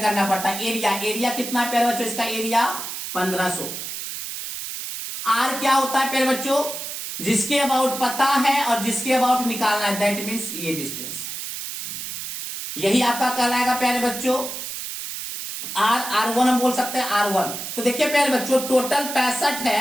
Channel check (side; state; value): right; noise; hiss, 7 dB below the sound